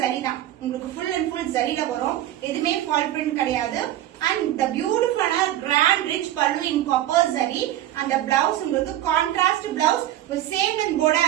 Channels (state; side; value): quieter; left; 13.3 dB